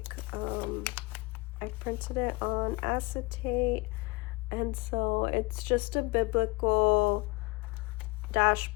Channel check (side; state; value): right; quieter; 24.6 dB